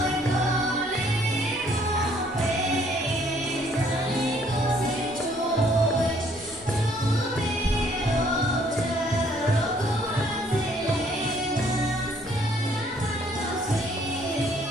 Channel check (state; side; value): normal; both; correlation 0.63